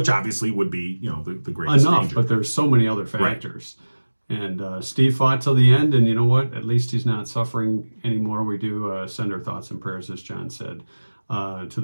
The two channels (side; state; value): both; inverted; correlation -1.00